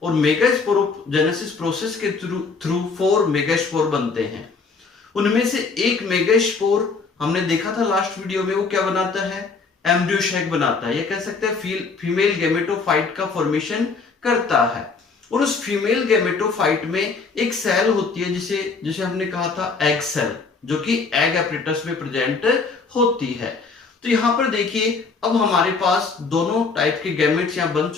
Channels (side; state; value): right; quieter; 4.6 dB